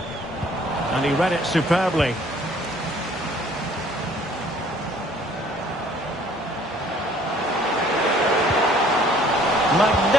And he read it superbly.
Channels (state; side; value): normal; both; correlation 0.57